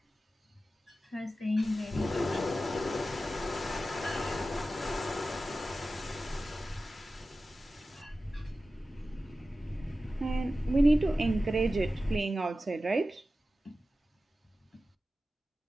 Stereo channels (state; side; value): normal; both; correlation 0.94